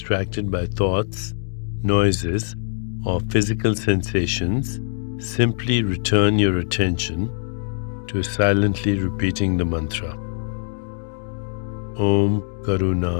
by thoughts, noises, or physical sensations, simply return your attention to silently repeating the mantra. Om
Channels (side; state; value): right; silent; digital silence